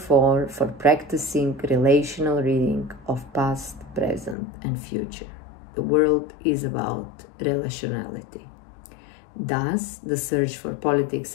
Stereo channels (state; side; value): drops out; right; at 4.4 s